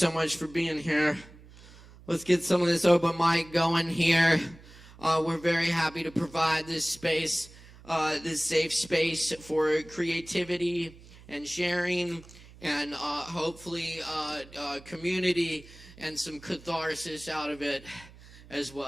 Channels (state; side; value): noise; right; hum, 21 dB below the sound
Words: much for being here. Let's get some of this open mic going here. We're very happy to provide this space, this safe space for creativity and sharing and hopefully community and some catharsis out of it as